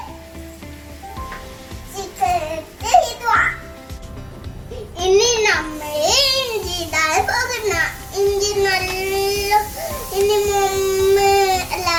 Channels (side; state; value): both; identical; correlation 1.00